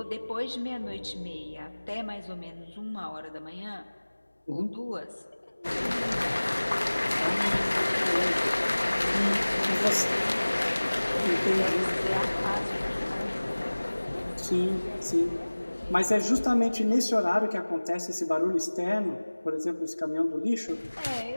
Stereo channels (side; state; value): both; inverted; correlation -1.00